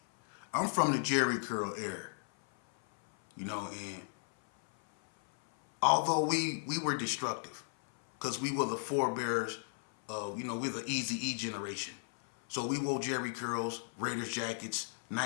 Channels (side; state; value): right; silent; 55 dB below the other